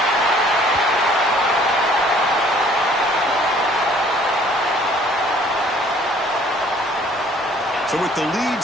So with the lead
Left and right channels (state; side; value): normal; both; correlation 0.57